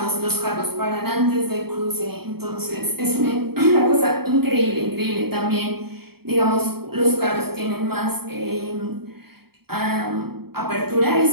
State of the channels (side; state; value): left; late; 0.95 ms